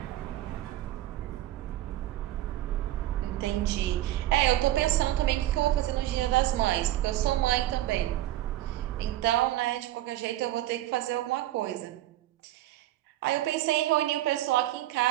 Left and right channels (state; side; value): quieter; left; 14.5 dB